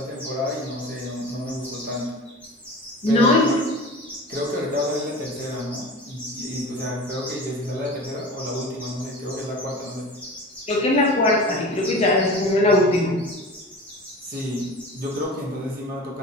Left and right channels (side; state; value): both; normal; correlation 0.36